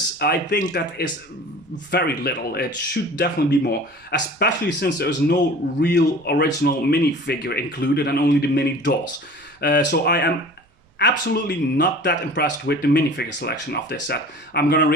I think that is very little. It should definitely be more, especially since there's no real original minifigure included and only the mini dolls. So I am absolutely not that impressed with the minifigure selection of this set. I'm gonna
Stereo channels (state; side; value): normal; both; correlation 0.43